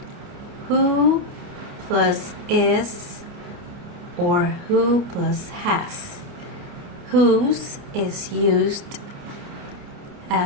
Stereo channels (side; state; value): left; late; 29 ms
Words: who plus is or who plus has. Whose is used